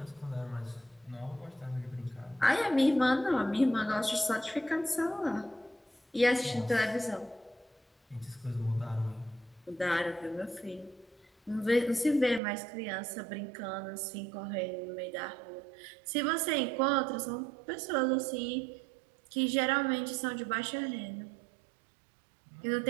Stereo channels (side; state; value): left; drops out; at 12.4 s